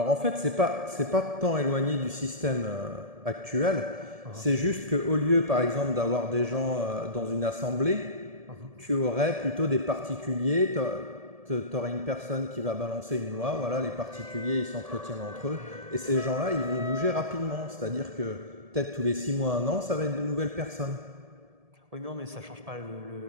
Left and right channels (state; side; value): late; left; 1.7 ms